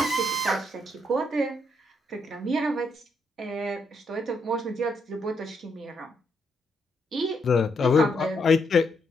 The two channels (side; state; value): both; normal; correlation 0.77